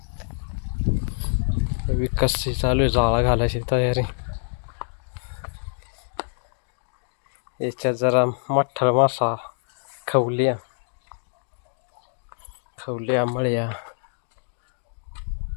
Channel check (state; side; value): silent; right; digital silence